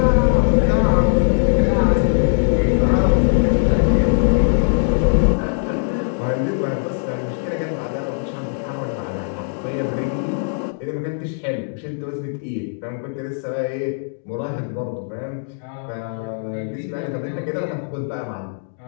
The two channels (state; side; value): silent; right; digital silence